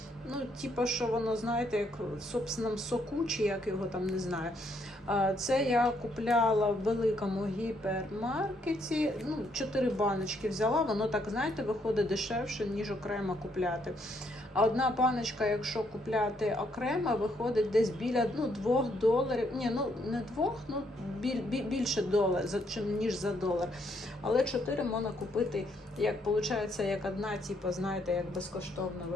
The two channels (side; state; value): both; normal; correlation 0.72